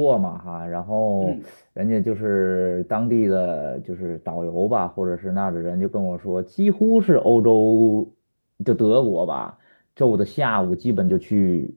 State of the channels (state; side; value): inverted; both; correlation -1.00